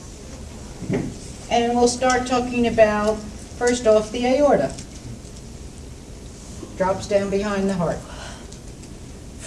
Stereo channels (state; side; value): identical; both; correlation 1.00